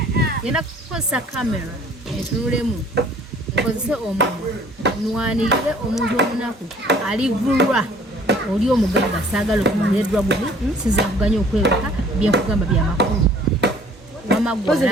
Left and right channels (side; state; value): both; normal; correlation 0.55